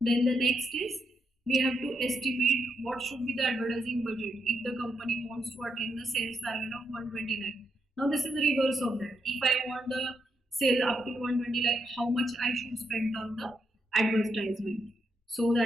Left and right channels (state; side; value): normal; both; correlation 0.81